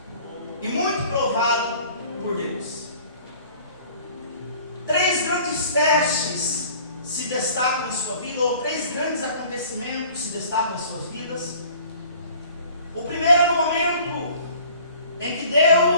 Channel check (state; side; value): inverted; both; correlation -0.50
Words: e muito provado por Deus. 3 grandes testes se destacam em sua vida, ou 3 grandes acontecimentos se destacam em suas vidas. O primeiro é no momento em que